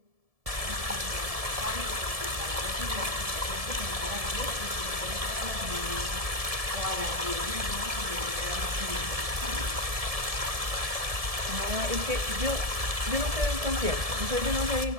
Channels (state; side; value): late; left; 1.7 ms